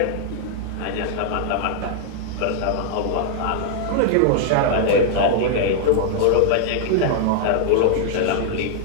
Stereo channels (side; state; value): both; different; correlation -0.01